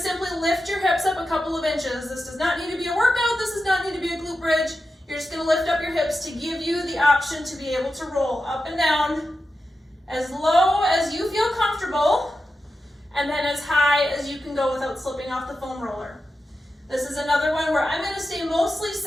lift your hips up a couple of inches. This does not need to be a workout, this does not need to be a glute bridge. You're just gonna lift up your hips to give you the option to be able to roll up and down as low as you feel comfortable, and then as high as you can go without slipping off the foam roller. This is another one where I'm gonna stay mostly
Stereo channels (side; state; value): both; normal; correlation 0.91